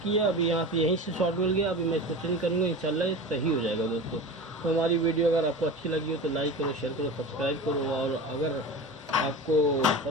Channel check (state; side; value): normal; both; correlation 0.30